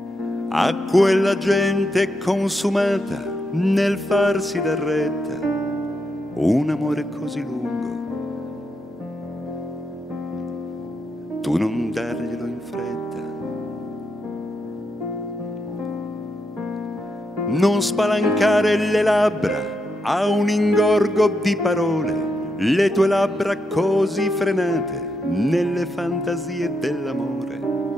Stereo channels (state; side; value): normal; both; correlation 0.82